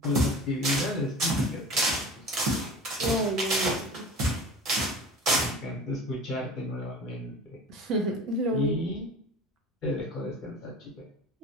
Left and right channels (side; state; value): both; normal; correlation 0.37